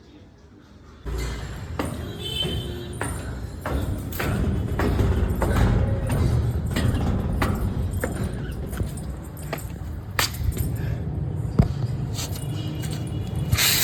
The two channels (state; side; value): identical; both; correlation 1.00